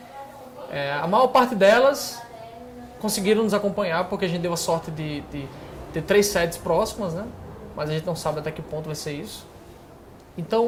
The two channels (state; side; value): identical; both; correlation 1.00